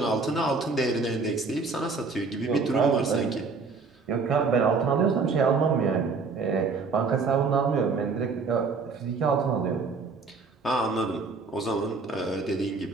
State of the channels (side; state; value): left; quieter; 4.5 dB